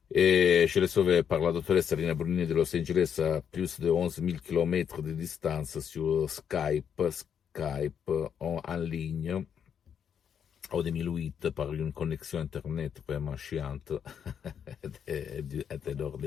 Et je l'ai sauvé par la doctoresse Serena Brunini de Los Angeles à plus de 11 000 km de distance sur Skype en ligne. En 2008, par une connexion Internet vraiment chiante et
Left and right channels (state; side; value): quieter; right; 8.0 dB